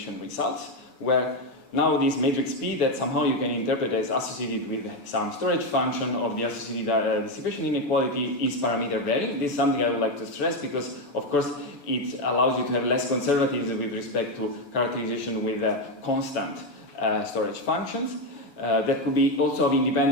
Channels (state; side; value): late; right; 7.0 ms